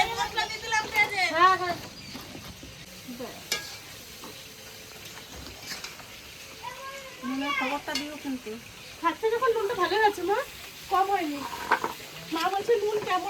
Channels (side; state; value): both; identical; correlation 1.00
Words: হ্যাঁ হ্যাঁ, নুনের খবরটা দিও কিন্তু। খাচ্ছে যখন নুনটা ভালো হয়েছে মা, কম হয়নি। মা বলছে নুন